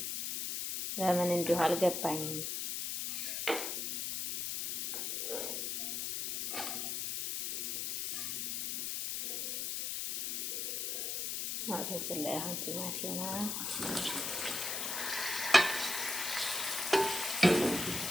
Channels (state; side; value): noise; left; hiss, 1 dB below the sound